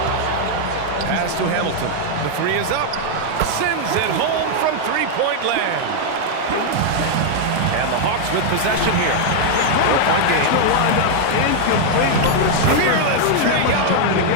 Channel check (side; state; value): both; different; correlation 0.00